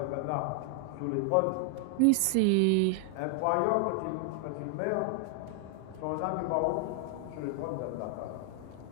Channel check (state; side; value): different; both; correlation 0.00